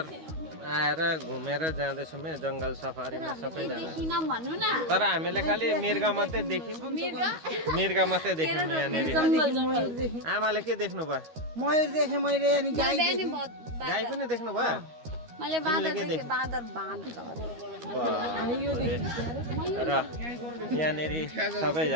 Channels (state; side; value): late; left; 13 ms